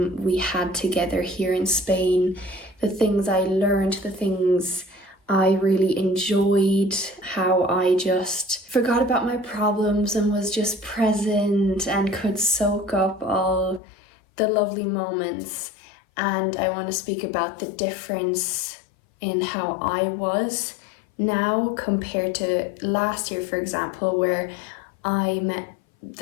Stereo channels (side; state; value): right; drops out; at 13.8 s